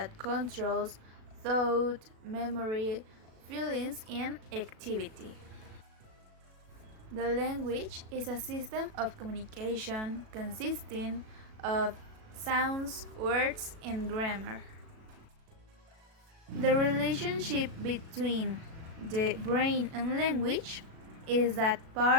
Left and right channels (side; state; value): left; late; 37 ms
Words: controls thought, memory, feelings, and activity. The language is a system of communication consisting of sounds, words, and grammar. The relationship between the brain and language is that